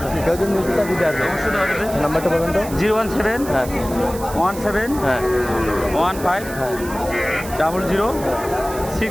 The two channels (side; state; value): right; noise; hiss, 14 dB below the sound